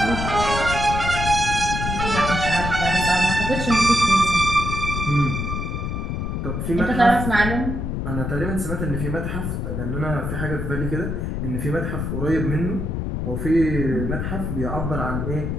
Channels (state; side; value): noise; left; rumble, 2 dB below the sound